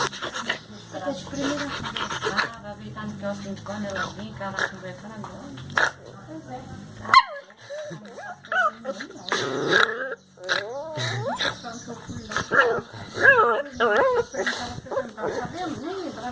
Eu tô de primeira conversar, vai ver tá no quiosque quando ela vinha, que ela vai conversando agora. Pois é. Nem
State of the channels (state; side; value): identical; both; correlation 1.00